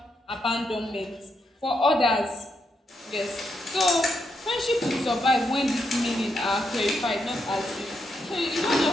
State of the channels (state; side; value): normal; both; correlation 0.81